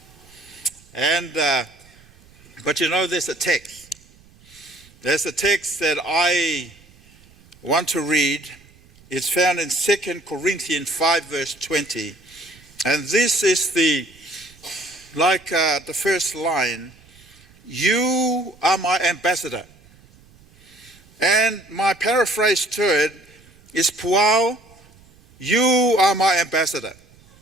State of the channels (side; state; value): right; noise; rumble, 27 dB below the sound